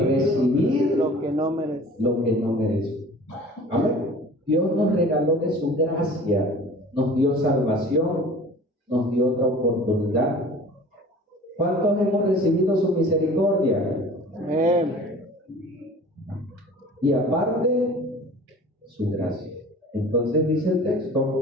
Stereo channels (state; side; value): normal; both; correlation 0.44